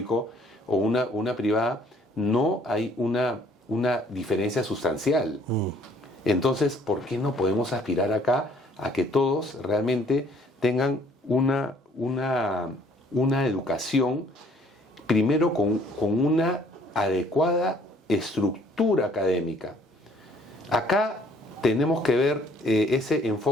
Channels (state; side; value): normal; both; correlation 0.60